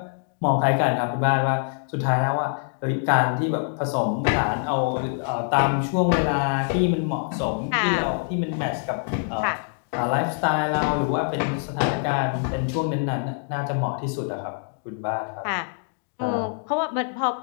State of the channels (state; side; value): silent; right; digital silence